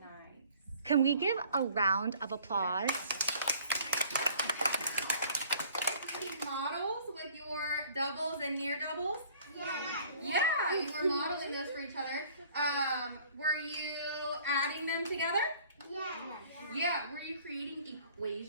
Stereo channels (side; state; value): both; inverted; correlation -0.54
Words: Nice. Can we give a round of applause models with your doubles and near doubles? Yeah. Yeah, you were modeling those for each other. Were you adding them together? Yeah. Yeah. Were you creating